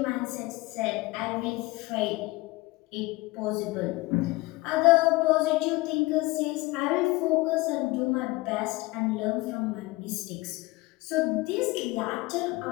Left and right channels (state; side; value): quieter; right; 21.4 dB